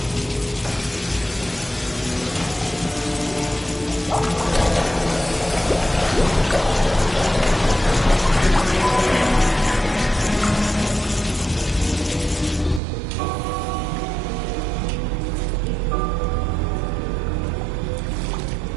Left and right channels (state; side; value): drops out; left; at 12.8 s